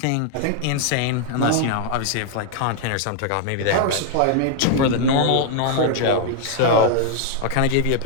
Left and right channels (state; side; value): different; both; correlation 0.00